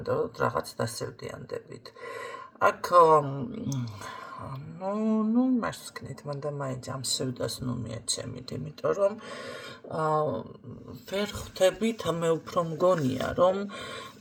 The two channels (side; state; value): both; identical; correlation 1.00